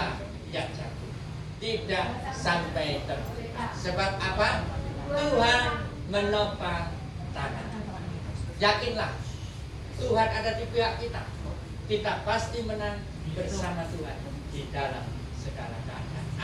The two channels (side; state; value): both; identical; correlation 1.00